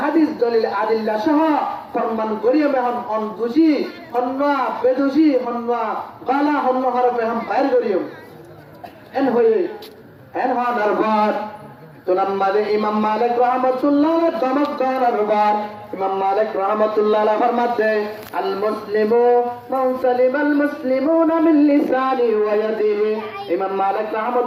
দলিল আদিল্লা সহ ফরমান করিয়ে মেহন অন দুষি হন্না বেদুষি হন্না গালা হন্না হরফে হাম বাইর করিও এন হয়ে এন হওয়ার পর তুনাম্মাদে ইমাম মালিক রাহমাতুল্লাহ দমক করার বার ইমাম মালিক রাহমাতুল্লাহ ফরমাতে আল মুসলিমু মান সালিমাল মুসলিমুনা মিন লিসানি ওয়া ইয়াদিহি ইমাম মালিক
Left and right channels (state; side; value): identical; both; correlation 1.00